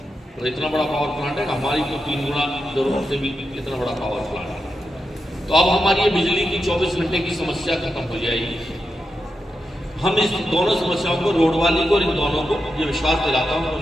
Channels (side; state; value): both; normal; correlation 0.87